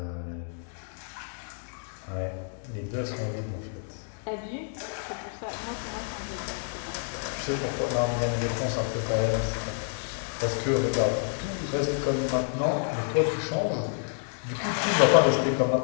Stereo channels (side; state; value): right; silent; digital silence